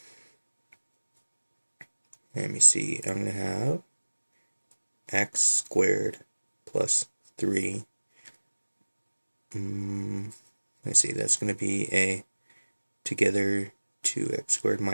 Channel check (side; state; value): both; inverted; correlation -1.00